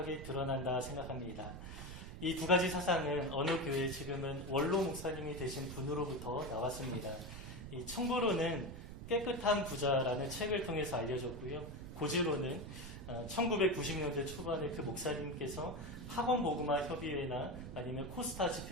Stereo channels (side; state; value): right; noise; rumble, 10 dB below the sound